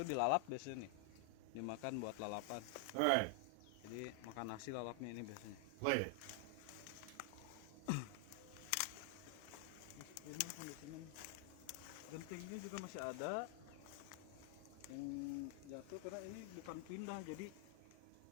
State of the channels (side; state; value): both; different; correlation 0.00